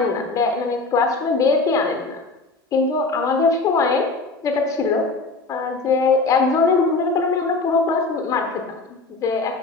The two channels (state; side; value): quieter; right; 3.6 dB